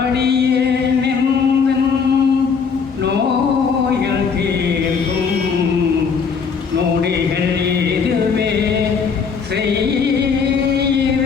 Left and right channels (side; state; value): right; quieter; 5.8 dB